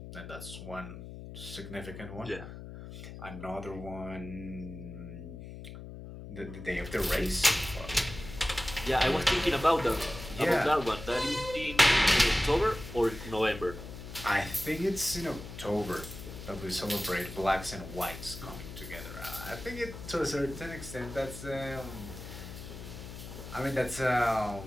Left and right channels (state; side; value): noise; left; hum, 12 dB below the sound